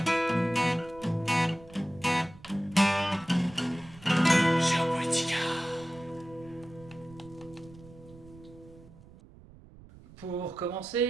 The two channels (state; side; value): noise; right; rumble, 21 dB below the sound